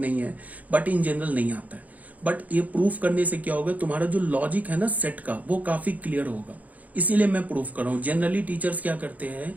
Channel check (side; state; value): left; late; 0.075 ms